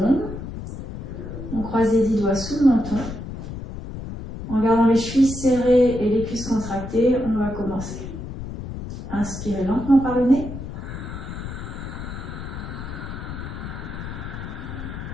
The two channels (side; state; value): left; noise; rumble, 9 dB below the sound